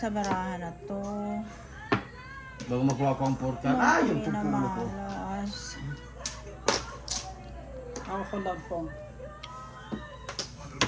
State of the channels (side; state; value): both; identical; correlation 1.00